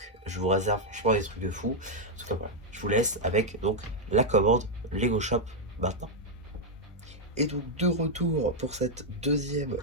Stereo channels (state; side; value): normal; both; correlation -0.01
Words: Je vous réserve franchement des trucs de fou. En tout cas, voilà, je vous laisse avec donc la commande Lego Shop maintenant. Et donc de retour pour cette deuxième